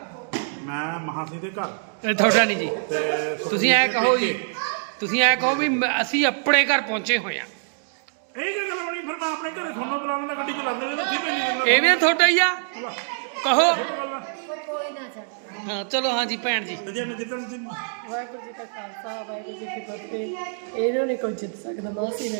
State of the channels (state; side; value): silent; left; digital silence